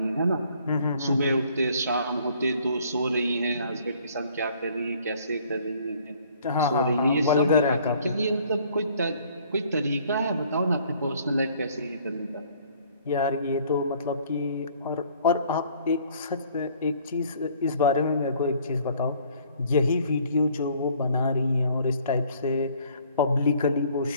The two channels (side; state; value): both; inverted; correlation -0.59